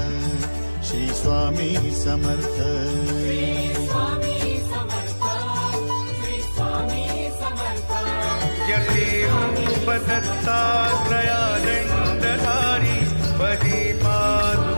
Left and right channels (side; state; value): both; inverted; correlation -1.00